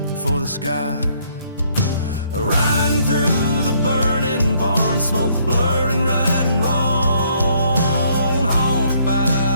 for the sky. Riding through the burning barn, smoke blurring right and wrong. Haunted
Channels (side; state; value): both; inverted; correlation -0.66